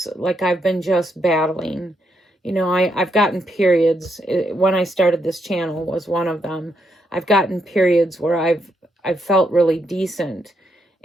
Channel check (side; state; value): both; normal; correlation 0.78